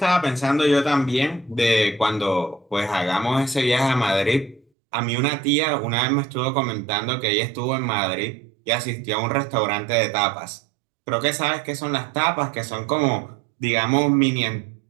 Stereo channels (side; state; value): left; drops out; at 4.6 s